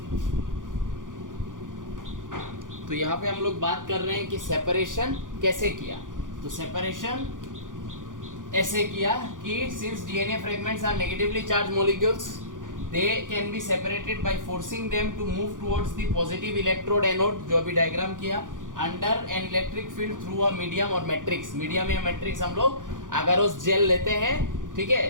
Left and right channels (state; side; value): late; left; 0.88 ms